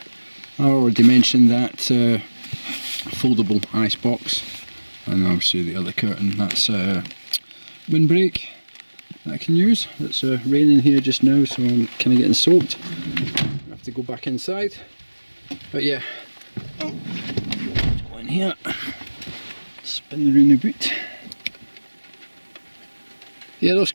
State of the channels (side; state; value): both; inverted; correlation -1.00